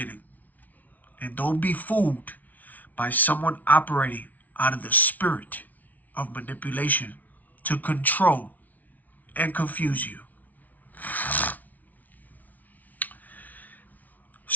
And don't be fooled by someone operating out of the spirit of manipulation to control and confuse you.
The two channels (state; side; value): late; right; 0.076 ms